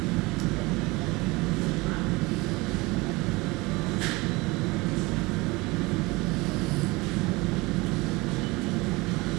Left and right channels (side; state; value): left; quieter; 23.5 dB